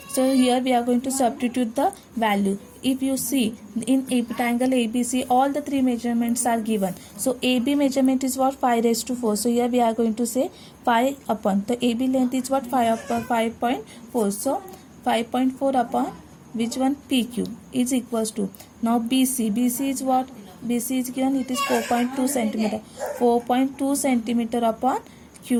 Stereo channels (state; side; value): identical; both; correlation 1.00